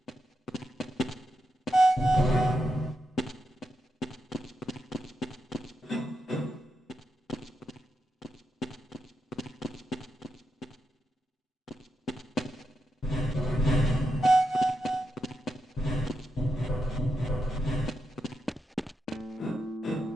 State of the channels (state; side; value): normal; both; correlation 0.85